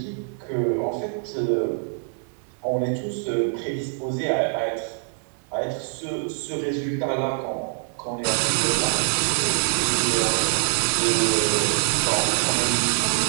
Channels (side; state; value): left; silent; digital silence